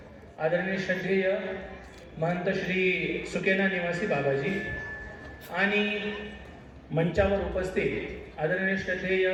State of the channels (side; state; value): both; identical; correlation 1.00